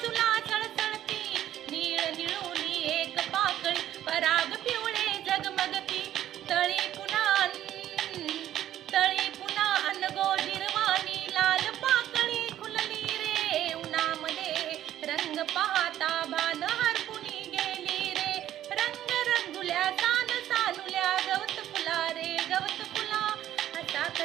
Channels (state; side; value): quieter; left; 12.1 dB